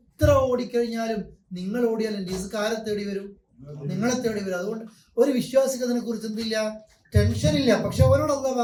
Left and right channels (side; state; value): both; identical; correlation 1.00